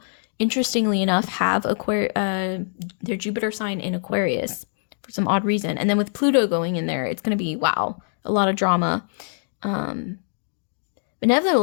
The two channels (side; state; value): right; silent; digital silence